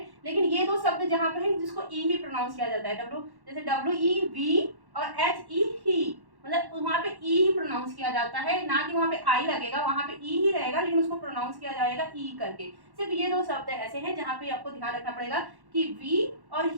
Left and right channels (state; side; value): late; left; 1.1 ms